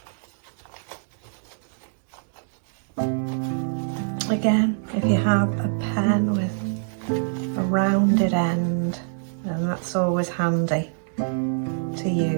Again, if you have a pen with a rounded end, then that's always handy to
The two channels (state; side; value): silent; left; digital silence